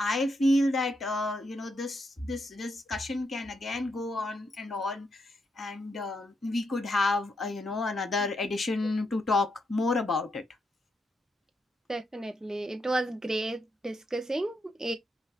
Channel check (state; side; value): normal; both; correlation 0.81